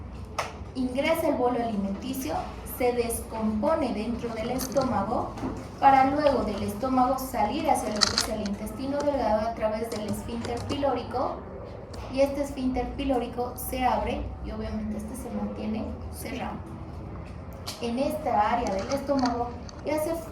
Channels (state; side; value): identical; both; correlation 1.00